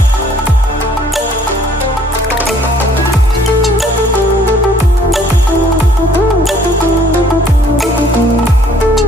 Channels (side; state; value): both; normal; correlation 0.59